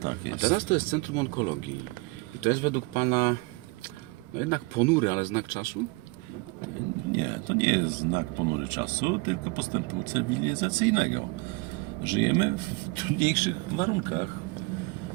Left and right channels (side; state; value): left; quieter; 25.8 dB